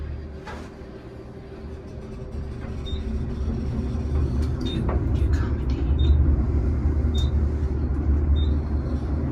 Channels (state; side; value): identical; both; correlation 1.00